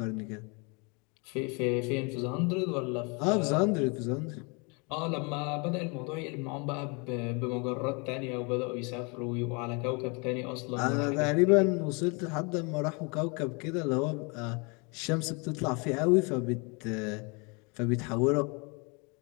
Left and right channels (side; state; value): right; quieter; 31.7 dB